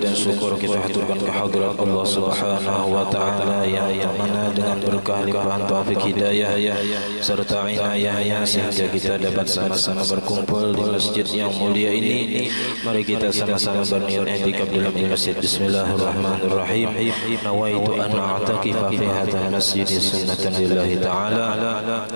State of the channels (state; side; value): inverted; both; correlation -1.00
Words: syukur kita haturkan kehadirat Allah Subhanahu wa taala yang mana dengan berkah limpahan taufik hidayah serta inayahnya sehingga kita dapat sama-sama berkumpul di masjid yang mulia ini. Mari kita sama-sama berniat i'tikaf dalam masjid. Bismillahirrahmanirrahim. Nawaitu an a'takifa fi hadzal masjid sunnatan lillahi taala.